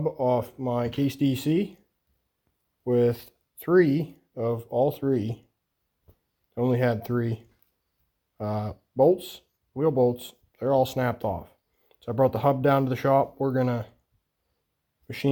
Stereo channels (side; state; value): both; identical; correlation 1.00